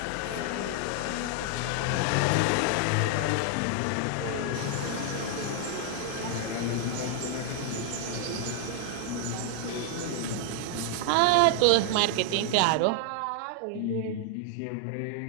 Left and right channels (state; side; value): different; both; correlation 0.00